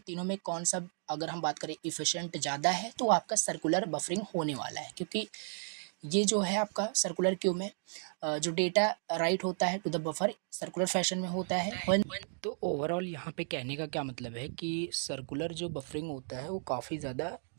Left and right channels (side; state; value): left; silent; digital silence